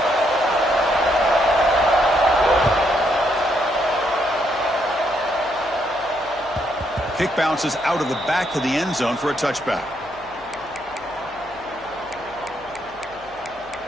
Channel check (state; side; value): noise; left; hum, 25 dB below the sound